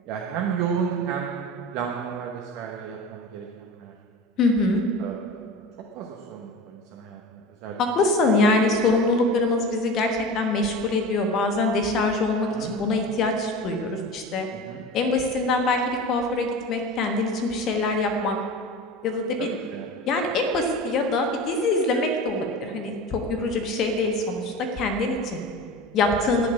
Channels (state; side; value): normal; both; correlation 0.32